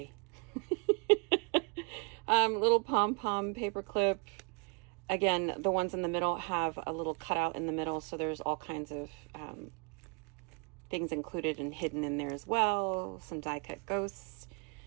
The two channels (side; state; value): left; quieter; 34.3 dB